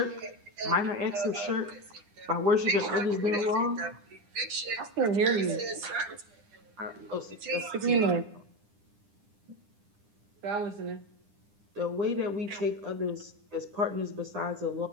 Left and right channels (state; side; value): late; left; 9.9 ms